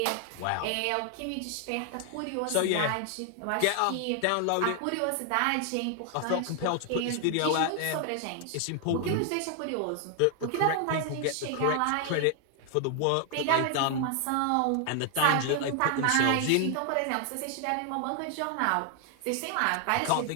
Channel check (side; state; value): both; different; correlation 0.00